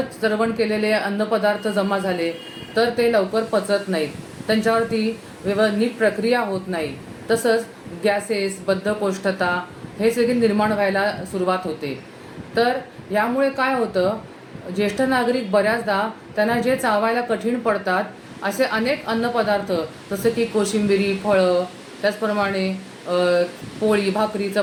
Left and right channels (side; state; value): both; identical; correlation 1.00